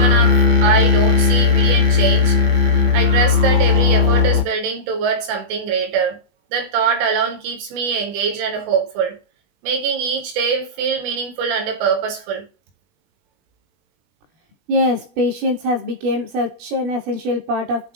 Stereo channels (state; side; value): late; left; 20 ms